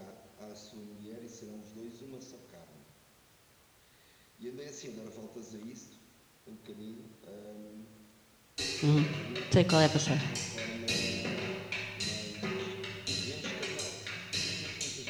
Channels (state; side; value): identical; both; correlation 1.00